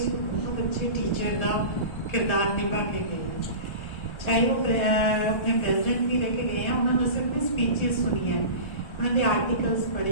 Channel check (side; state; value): right; late; 1.3 ms